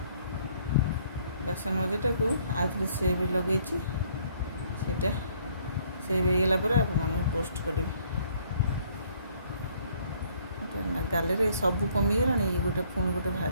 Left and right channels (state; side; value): inverted; both; correlation -0.63